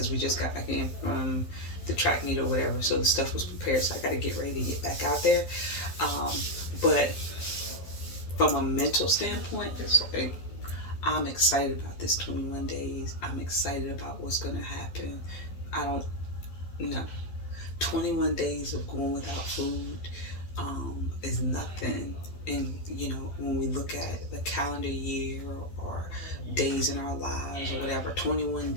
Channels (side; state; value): right; late; 12 ms